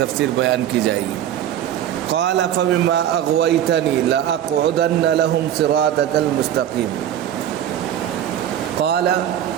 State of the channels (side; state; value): left; quieter; 10.8 dB